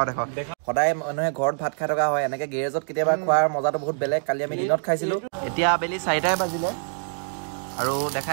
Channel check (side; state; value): left; silent; digital silence